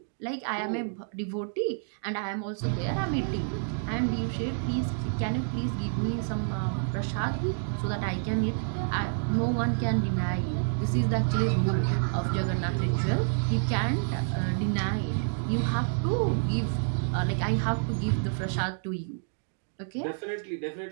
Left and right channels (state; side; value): silent; left; digital silence